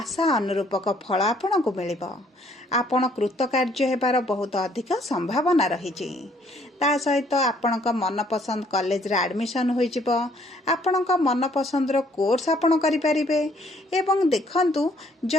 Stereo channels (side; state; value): both; normal; correlation 0.64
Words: अनुरूपक फल आपणको मिलिबो। आपण कृतकार्य हेबार बहुत अधिक संभावना रहिछि। ता सहित आपणक मनपसंद कॉलेज रे एडमिशन होई जिवो, आपणक मनपसंद रो कोर्स आपण करि परिबे। एवं देखंतु